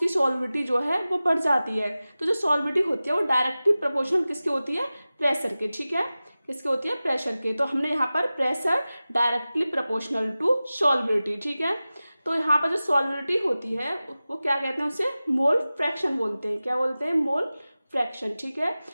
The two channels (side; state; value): both; inverted; correlation -0.96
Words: सॉल्युबिलिटी जो है वो बढ़ जाती है। तो जो सॉल्युबिलिटी होती है वो डायरेक्टली प्रोपोर्शनल किसकी होती है? प्रेशर के। ठीक है, किसके होती है? प्रेशर के। तो हमने यहाँ पर pressure directly proportional to solubility. ठीक है, तो यहाँ पर जो सॉल्युबिलिटी होती है वो क्या कहते हैं? उसे मोल फ्रैक्शन बोलते हैं। क्या बोलते हैं? Mole fraction. ठीक है,